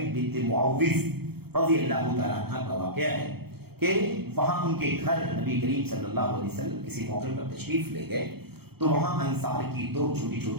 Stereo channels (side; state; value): left; late; 0.96 ms